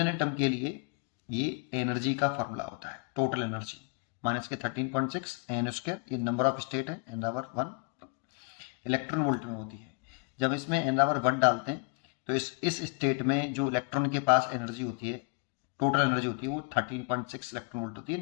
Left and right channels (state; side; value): quieter; right; 37.5 dB